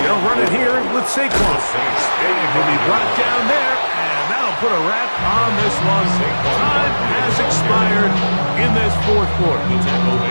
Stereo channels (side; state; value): both; inverted; correlation -1.00